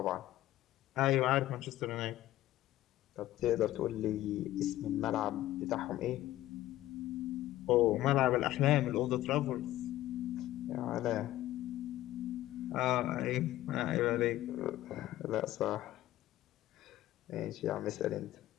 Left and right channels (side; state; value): right; quieter; 14.8 dB